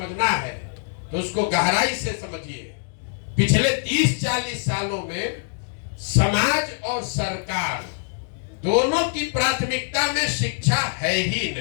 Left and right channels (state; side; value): silent; right; digital silence